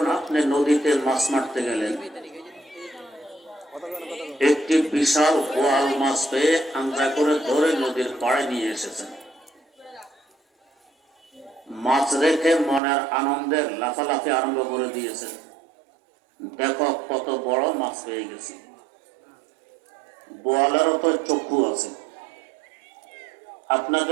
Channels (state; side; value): drops out; left; at 12.8 s